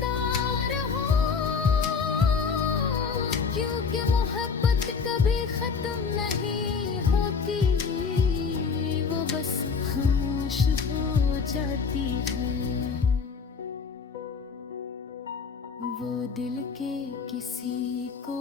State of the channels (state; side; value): quieter; right; 5.5 dB